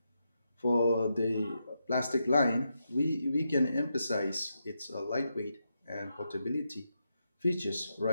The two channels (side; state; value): both; inverted; correlation -0.85